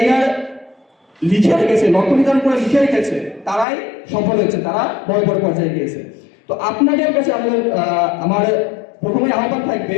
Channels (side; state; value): right; drops out; at 3.7 s